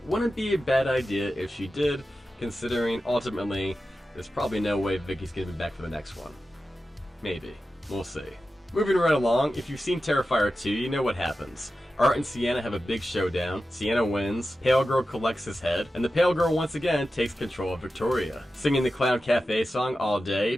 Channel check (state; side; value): normal; both; correlation 0.93